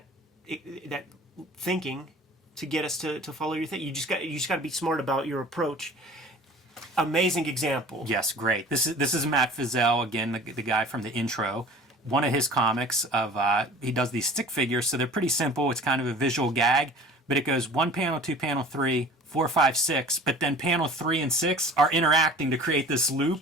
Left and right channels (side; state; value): both; normal; correlation 0.45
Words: thinking, to get us to follow your thing. You just got to be smart about your approach. Amazing example. Yes, great. This is Matt Fizel, again, the guy from the intro. One of his comics he does these stick figures, so they're pretty simple. It's kind of a visual gag, but it goes 1 panel, 2 panel, 3, 4, 5, 6, but then panel 3 and 6 are interacting to create this